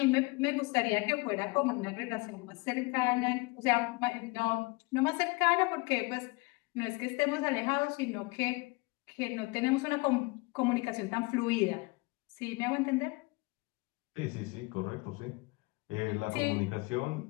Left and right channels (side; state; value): right; quieter; 26.1 dB